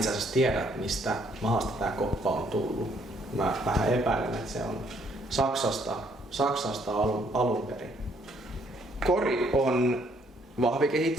asiassa tiedä, mistä maasta tää koppa on tullut. Mä vähän epäilen, että se on Saksasta alun perin. Kori on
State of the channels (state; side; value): normal; both; correlation 0.67